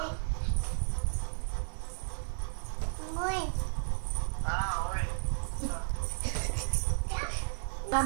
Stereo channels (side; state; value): left; silent; digital silence